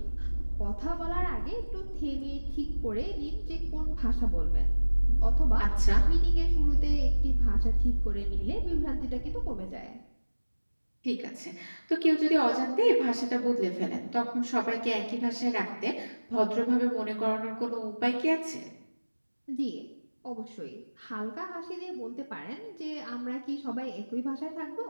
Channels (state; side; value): inverted; both; correlation -1.00